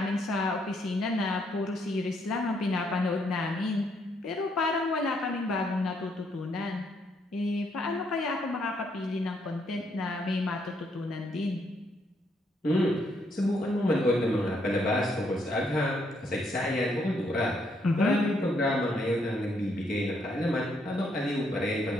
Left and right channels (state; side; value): normal; both; correlation 0.73